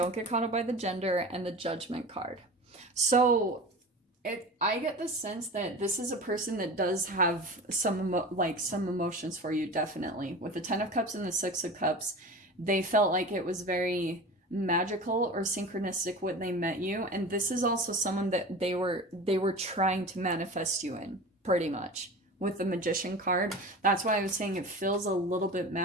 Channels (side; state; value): both; normal; correlation 0.34